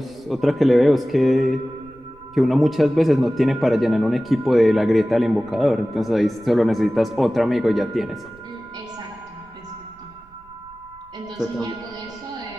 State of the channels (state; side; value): noise; right; rumble, 27 dB below the sound